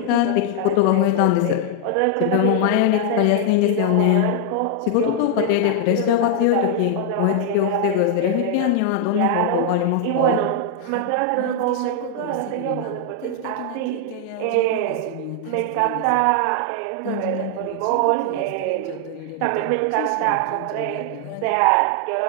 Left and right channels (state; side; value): different; both; correlation 0.00